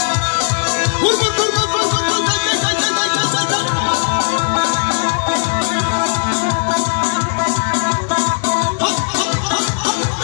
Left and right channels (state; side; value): silent; right; digital silence